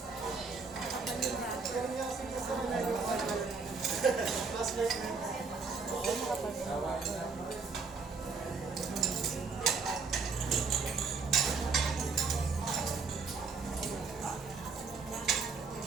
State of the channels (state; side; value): quieter; left; 4.7 dB